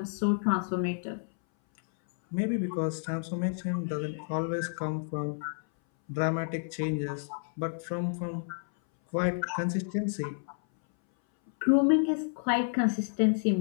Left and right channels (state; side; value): silent; right; 58 dB below the other